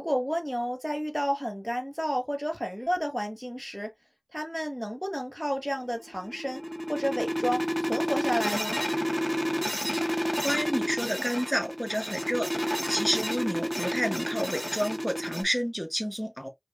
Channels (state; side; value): identical; both; correlation 1.00